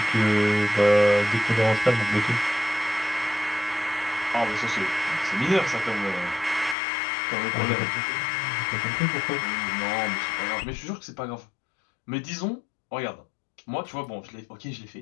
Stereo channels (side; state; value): right; drops out; at 6.8 s